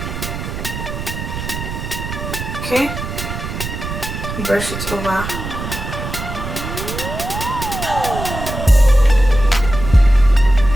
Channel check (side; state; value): right; noise; rumble, 7 dB below the sound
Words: Okay? You brush it over.